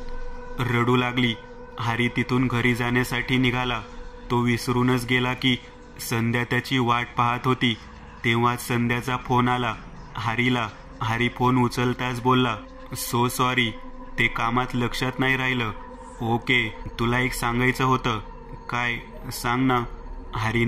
रडू लागली. हरी तिथून घरी जाण्यासाठी निघाला. तो विसरूनच गेला की संध्या त्याची वाट पाहत होती. तेव्हाच संध्याचा फोन आला हरीला. हरी फोन उचलताच बोलला, सो सॉरी, ते कामात लक्षात नाही राहिलं. ओके, तुला एक सांगायचं होतं. काय, सांग ना.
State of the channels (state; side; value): identical; both; correlation 1.00